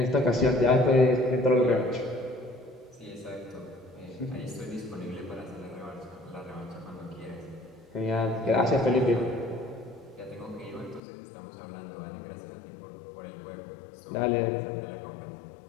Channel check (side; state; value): right; drops out; at 11.0 s